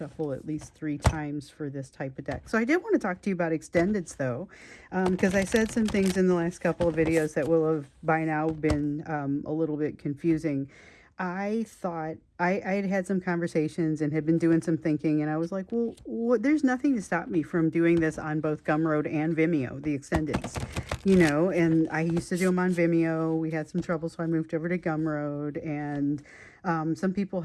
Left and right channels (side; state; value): both; identical; correlation 1.00